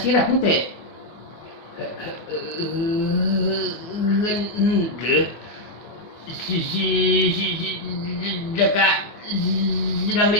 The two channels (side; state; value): right; late; 24 ms